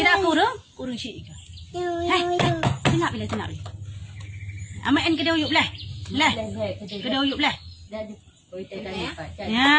kurung syik ke. Hai, tinap bila. Amat en kedai uyup lah. Lah. Kedai uyup lah.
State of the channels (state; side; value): identical; both; correlation 1.00